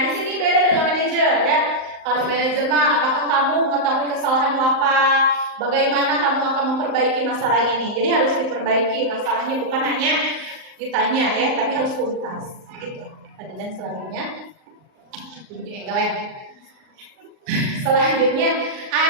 di sini beda dengan manajer ya. Kalau manajer mah, apakah kamu mengetahui kesalahanmu apa? Bagaimana kamu akan memperbaiki masalah ini? Jadi harus diperbaiki masalahnya, bukan hanya ditanya ya, tapi harus tuntas. Gitu. Dan selanjutnya, selanjutnya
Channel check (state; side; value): late; left; 38 ms